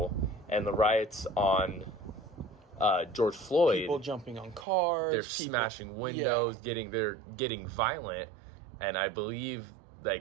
and the riots on George Floyd, people jumping on cars, they're smashing windows, they're getting violent. And I believe,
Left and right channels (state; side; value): drops out; left; at 4.7 s